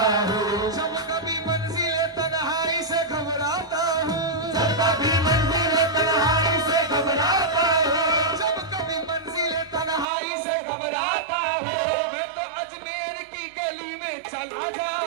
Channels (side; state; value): left; drops out; at 10.1 s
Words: हूँ, जब कभी मंजिले तन्हाई से घबराता हूँ, जब कभी मंजिल तन्हाई से घबराता हूँ, जब कभी मंजिले तन्हाई से घबराता हूँ, मैं तो अजमेर की गली में चला